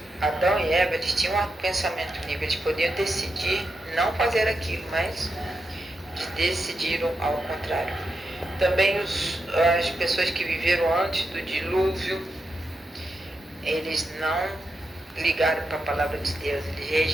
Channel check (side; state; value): both; normal; correlation 0.86